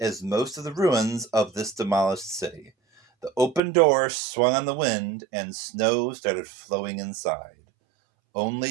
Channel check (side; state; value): left; drops out; at 3.6 s